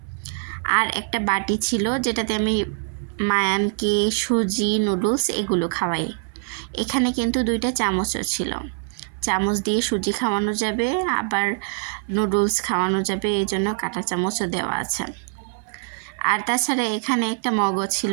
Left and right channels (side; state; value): left; silent; 59 dB below the other